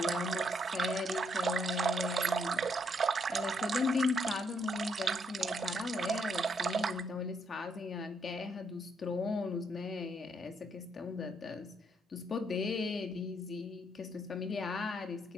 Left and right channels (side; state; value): both; normal; correlation 0.73